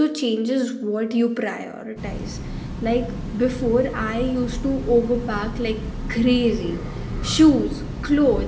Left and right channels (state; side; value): identical; both; correlation 1.00